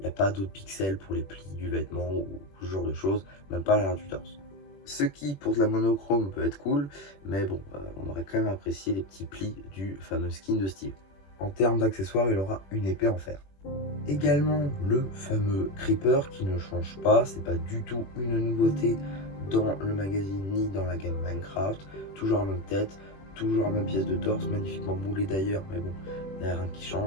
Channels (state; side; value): late; right; 21 ms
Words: n'y a pas d'autres pixels pour les plis du vêtement ou ce genre de choses, même pas à l'arrière du torse. Ce qui, pour de la monochrome, peut être cool, mais bon, on aurait quand même apprécié les petits plis du fameux skin de Steve. En termes d'accessoires, il aura une épée en fer. Également le fameux Creeper qui ne change pas, c'est pas du tout une nouveauté dans le magazine ni dans la gamme Minecraft. Toujours la même tête, toujours la même pièce de torse, magnifiquement moulée d'ailleurs, mais bon, il n'y a rien qui